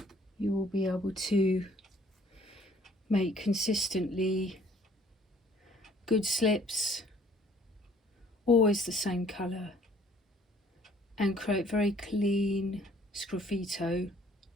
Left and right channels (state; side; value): normal; both; correlation 0.58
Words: you will be able to make consistently good slips, always the same colour, and create very clean sgraffito